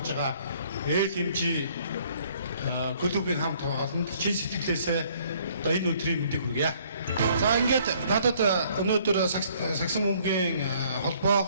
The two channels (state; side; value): inverted; both; correlation -0.61